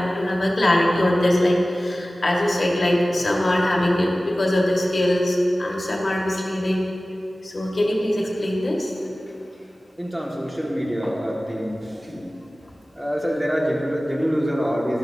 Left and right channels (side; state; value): both; normal; correlation 0.97